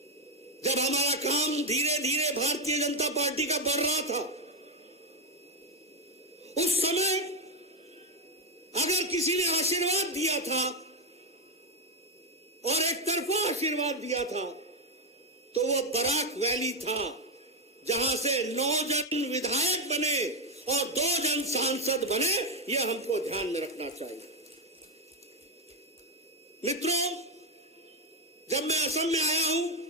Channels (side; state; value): both; normal; correlation 0.08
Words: जब हमारा काम धीरे धीरे भारतीय जनता पार्टी का बढ़ रहा था, उस समय अगर किसी ने आशीर्वाद दिया था और एक तरफा आशीर्वाद दिया था तो वह बराक वैली था, जहां से 9 जन विधायक बने और 2 जन सांसद बने। यह हमको ध्यान में रखना चाहिए। मित्रों, जब मैं असम में आया हूं